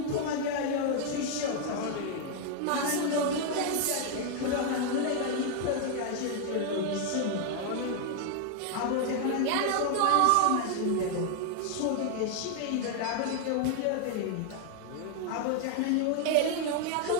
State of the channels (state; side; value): different; both; correlation 0.00